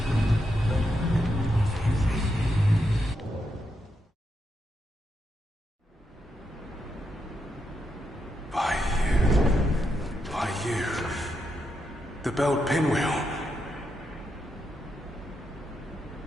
By you. The belt pinwheel.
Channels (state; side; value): normal; both; correlation 0.83